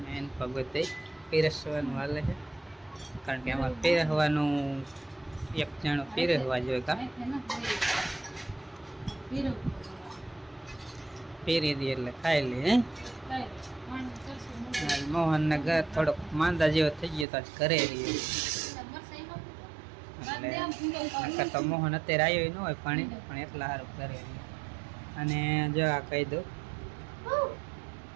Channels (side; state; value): left; drops out; at 17.2 s